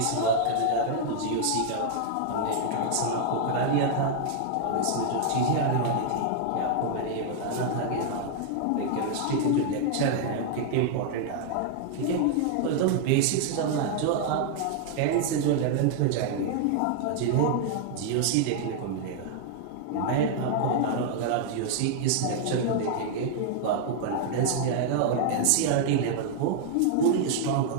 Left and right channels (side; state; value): both; different; correlation 0.00